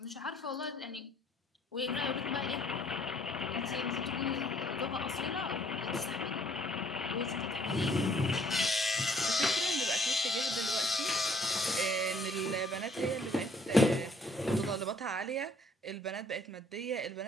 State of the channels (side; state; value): both; normal; correlation 0.62